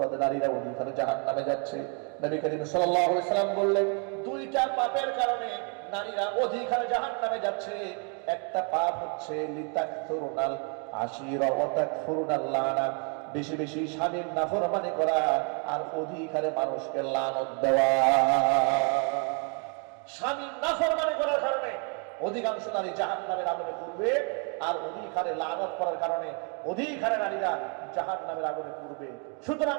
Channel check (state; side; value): quieter; left; 38.3 dB